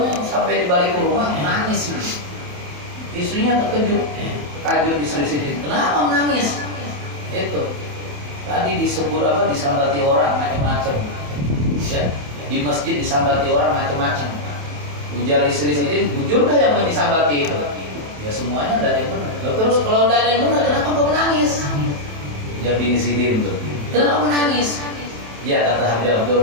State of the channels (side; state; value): left; late; 27 ms